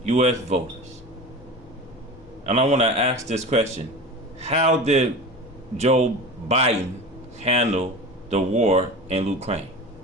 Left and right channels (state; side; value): normal; both; correlation 0.32